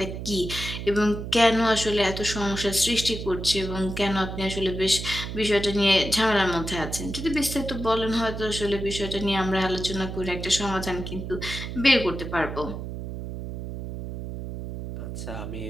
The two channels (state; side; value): noise; right; hum, 7 dB below the sound